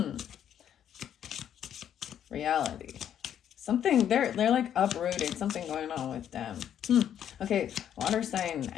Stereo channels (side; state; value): right; quieter; 9.7 dB